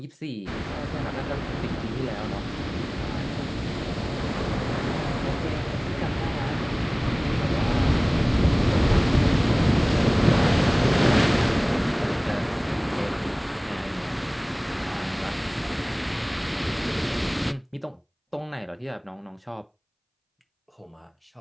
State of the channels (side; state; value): both; identical; correlation 1.00